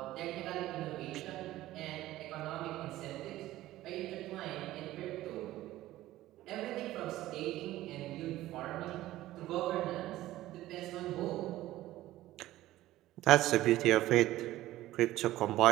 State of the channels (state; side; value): quieter; left; 15.5 dB